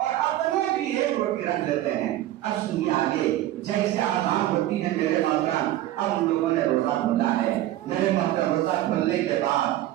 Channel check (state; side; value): quieter; left; 14.5 dB